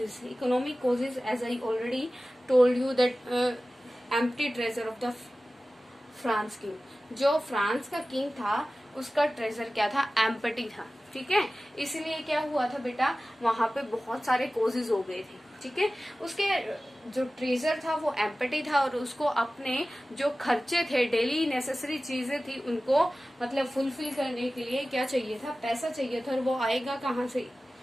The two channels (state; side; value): normal; both; correlation 0.96